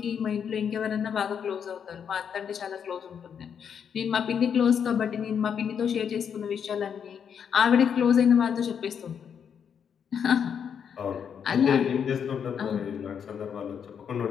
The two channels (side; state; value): right; quieter; 7.6 dB